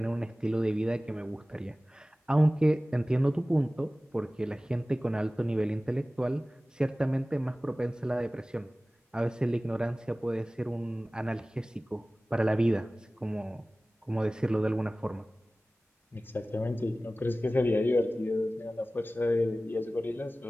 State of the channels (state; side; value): normal; both; correlation 0.97